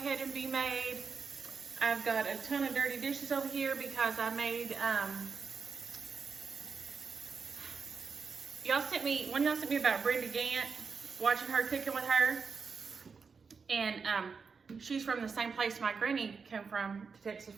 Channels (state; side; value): quieter; left; 5.4 dB